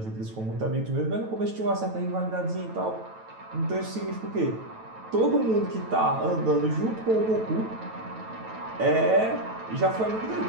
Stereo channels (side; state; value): left; late; 9.1 ms